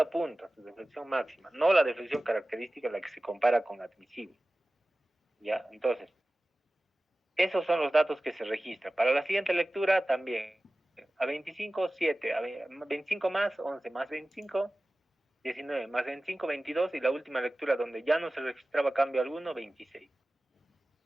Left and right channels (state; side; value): normal; both; correlation 0.97